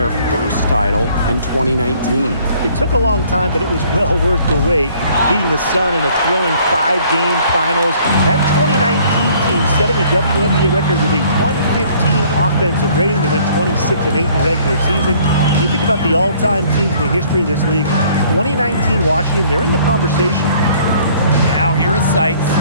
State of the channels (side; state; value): both; inverted; correlation -0.58